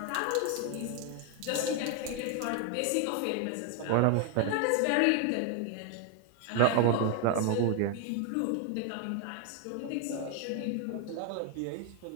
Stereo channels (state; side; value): different; both; correlation 0.01